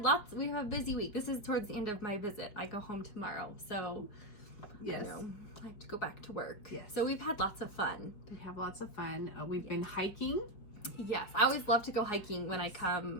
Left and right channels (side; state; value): right; late; 4.7 ms